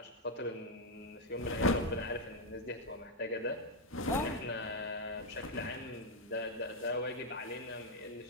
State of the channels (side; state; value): both; normal; correlation 0.01